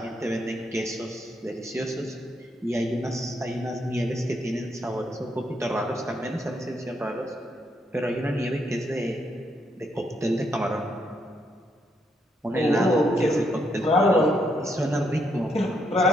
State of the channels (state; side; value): normal; both; correlation 0.76